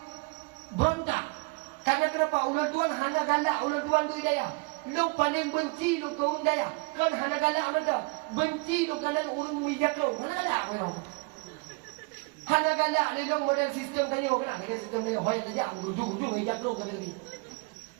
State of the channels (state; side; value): quieter; left; 29.4 dB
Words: berontak karena kenapa ulun tuan hanya galak ulun tuan tu hidayah. Lo paling benci lo kaum daya kan hana galak mana benci lo kalan urang mijak lo hana galak memang hana galak ni lo model sistem kanyo kan ada sistem ni hoi saja ujung-ujung mijak lo kan lagi